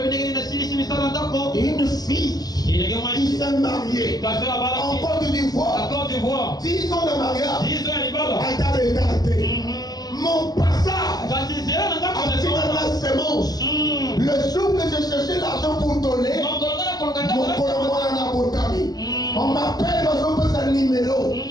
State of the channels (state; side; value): late; right; 0.19 ms